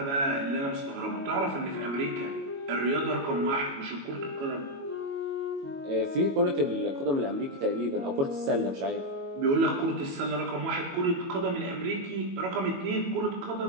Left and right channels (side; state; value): left; late; 22 ms